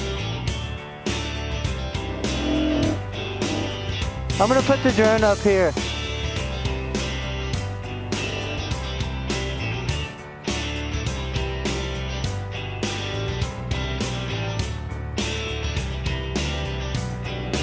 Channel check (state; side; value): identical; both; correlation 1.00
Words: I'm gonna put the drone up here.